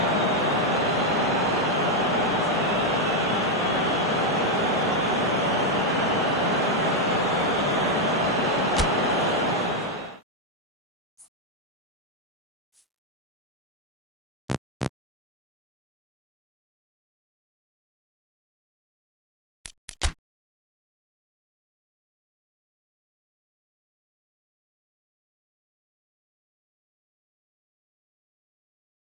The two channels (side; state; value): both; normal; correlation 0.03